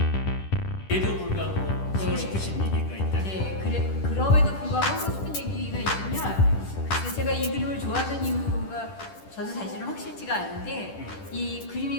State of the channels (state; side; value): late; right; 10 ms